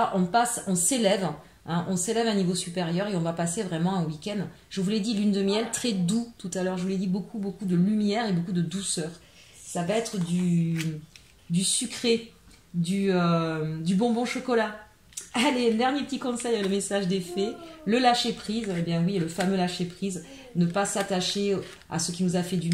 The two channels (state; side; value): identical; both; correlation 1.00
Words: on s'élève, hein, on s'élève à un niveau supérieur et on va passer vraiment un week-end. Je vous l'ai dit, lune de miel, très doux tout à l'heure. Je vous l'ai dit, beaucoup, beaucoup de lumière et beaucoup de douceur. Ça va être du sucré, du bonbon chocolat. Allez, dernier petit conseil, le message des fées, le lâcher prise. Eh bien oui, le fameux lâcher prise, ne pas s'attacher à ce qui nous a fait du